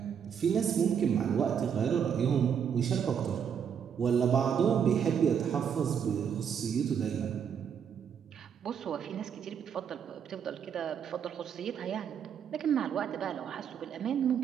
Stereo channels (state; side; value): quieter; left; 7.8 dB